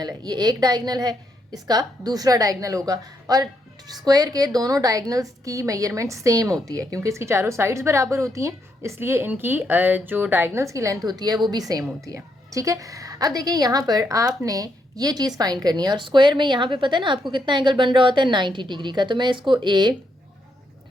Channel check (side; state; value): both; normal; correlation 0.78